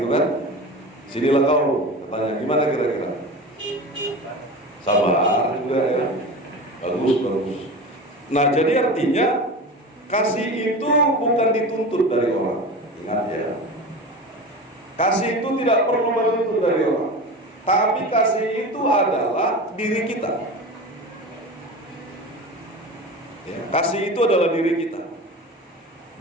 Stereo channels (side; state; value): both; normal; correlation 0.30